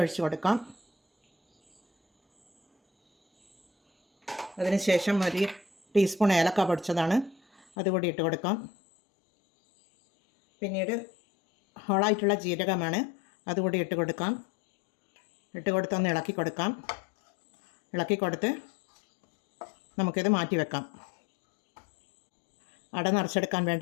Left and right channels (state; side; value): drops out; right; at 7.7 s